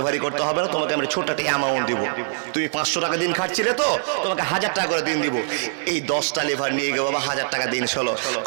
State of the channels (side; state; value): left; silent; digital silence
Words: করতে হবে না, তোমাকে আমরা ছোট একটা অ্যামাউন্ট দিব। তুমি 500 টাকা দিন খাটছিলে তো, তোমাকে 1000 টাকা করে দিন দিব। এই 10টা লেভার নিয়ে গেল, বাবা 1000 টাকা দিন হলো।